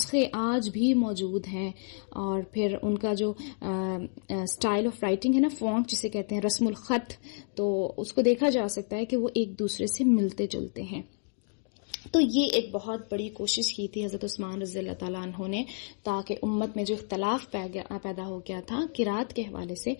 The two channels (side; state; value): right; silent; 55 dB below the other